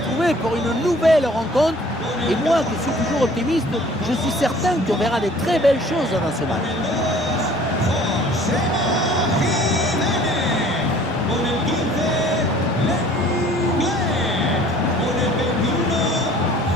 pour une nouvelle rencontre. Et moi qui suis toujours optimiste, je suis certain qu'on verra des très belles choses dans ce match.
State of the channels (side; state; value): both; normal; correlation 0.52